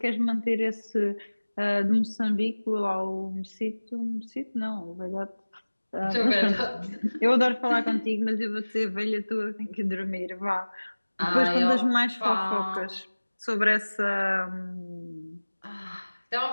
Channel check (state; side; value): inverted; both; correlation -1.00